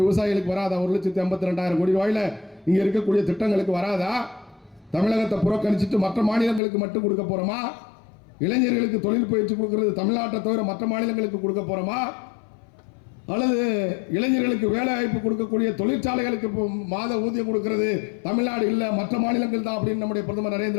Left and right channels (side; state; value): right; drops out; at 6.6 s